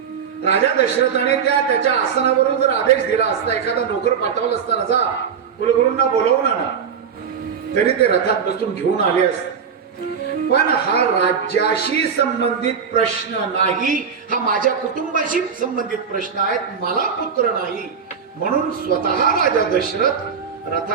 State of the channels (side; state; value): left; quieter; 6.9 dB